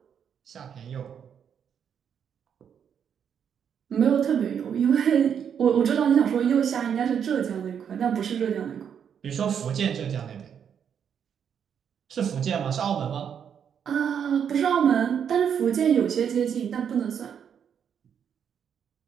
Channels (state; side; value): quieter; left; 8.0 dB